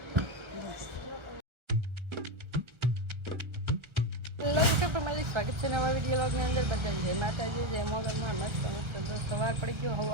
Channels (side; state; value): left; late; 1.3 ms